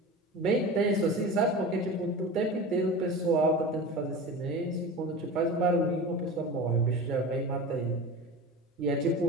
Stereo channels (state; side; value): normal; both; correlation 0.31